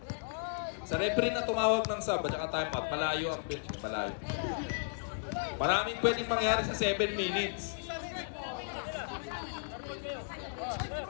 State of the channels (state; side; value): silent; right; digital silence